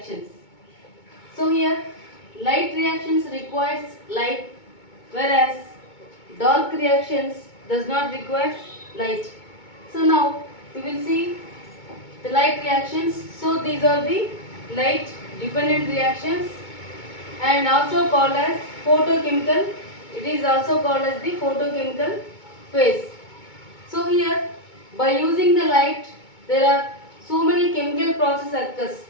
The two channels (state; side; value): late; right; 2.2 ms